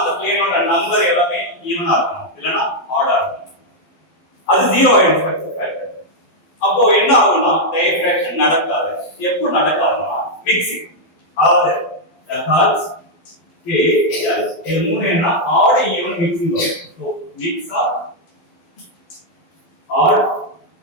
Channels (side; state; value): right; late; 12 ms